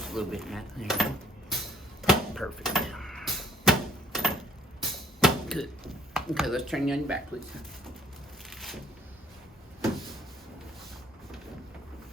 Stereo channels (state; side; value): normal; both; correlation 0.60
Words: a little bit, Matt. There you go. Perfect. Good. Okay, let's turn you on your back, please.